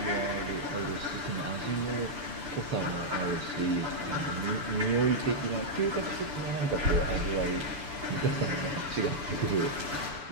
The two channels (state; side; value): late; left; 6.9 ms